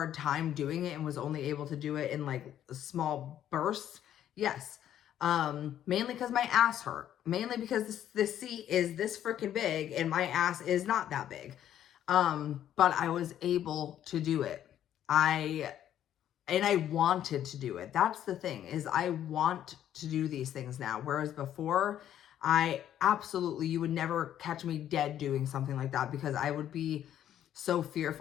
time doing it and was only able to do it in like small bursts? Yes. Mainly because my ass hurt. Mainly because this seat is this freaking big and my ass is not that big. But I was able to do it. And I wanted to do it. That's the thing, is I want to do these things now. Whereas before, you would never catch me dead doing something like that because I would be so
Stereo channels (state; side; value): quieter; right; 10.9 dB